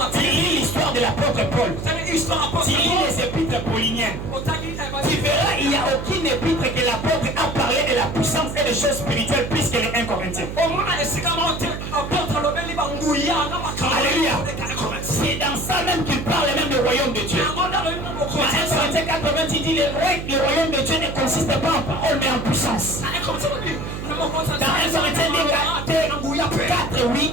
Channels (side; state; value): right; noise; hum, 7 dB below the sound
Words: tu lis l'histoire de l'apôtre Paul, tu lis les épîtres pauliniennes, tu verras, il n'y a aucune épître que l'apôtre a parlé de la puissance et des choses spirituelles plus que les 1 Corinthiens. Alléluia. C'est dans ça même qu'il parle même du royaume de Dieu. Dans 1 Corinthiens 80, il dit le royaume de Dieu ne consiste pas en parole mais en puissance. Dans 1 Corinthiens 4, oui,